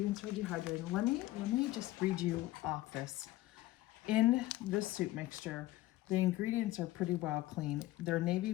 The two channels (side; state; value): right; quieter; 16.6 dB